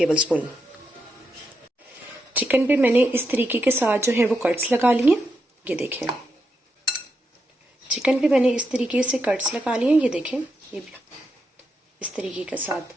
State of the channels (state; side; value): normal; both; correlation 0.83